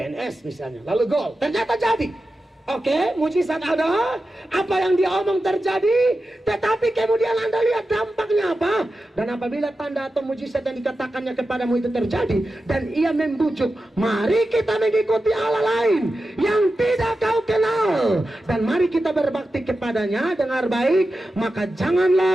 misalnya. Lalu gol, ternyata jadi. Oke, mujizat ada, apa yang dia omong terjadi, tetapi kemudian Anda lihat dampaknya apa. Dan apabila tanda atau mujizat yang dikatakannya kepadamu itu terjadi, dan ia membujuk, mari kita mengikuti Allah lain yang tidak kau kenal, dan mari kita berbakti kepadanya, dengar baik, maka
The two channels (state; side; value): normal; both; correlation 0.92